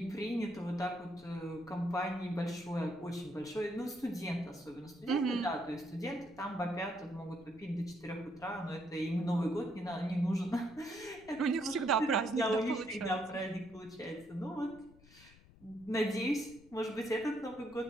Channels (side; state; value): left; noise; rumble, 24 dB below the sound